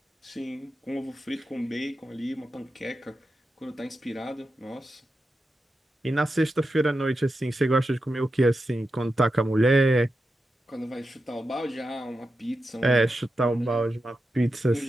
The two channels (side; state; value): both; normal; correlation 0.90